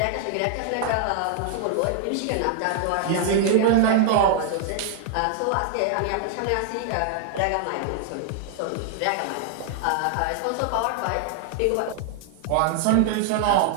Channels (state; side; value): different; both; correlation 0.00